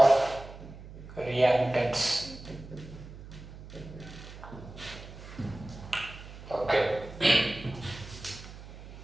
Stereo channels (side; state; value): right; noise; hum, 15 dB below the sound